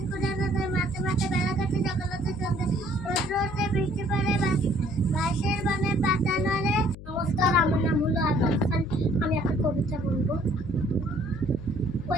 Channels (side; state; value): left; noise; hum, 14 dB below the sound